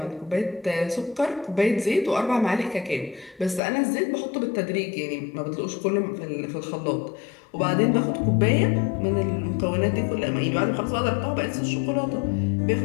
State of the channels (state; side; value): drops out; right; at 3.6 s